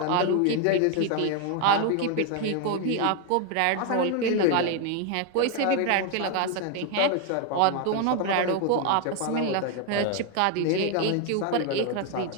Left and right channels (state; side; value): different; both; correlation 0.01